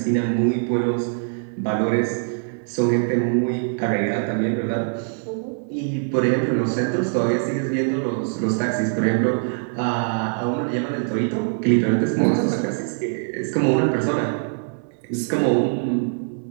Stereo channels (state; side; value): silent; left; digital silence